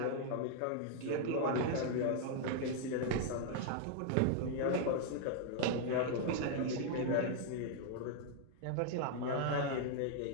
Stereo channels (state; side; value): different; both; correlation -0.01